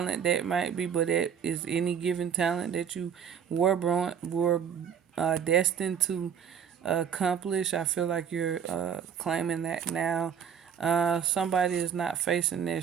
that might be, but it is any given talent that you were destined to accomplish. I feel like you're claiming that now. Somebody is not facing their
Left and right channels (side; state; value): left; quieter; 7.9 dB